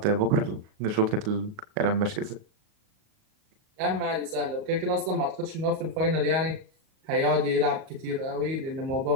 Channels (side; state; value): left; late; 38 ms